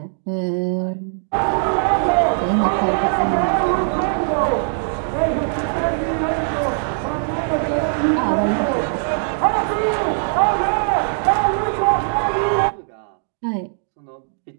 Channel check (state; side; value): silent; left; digital silence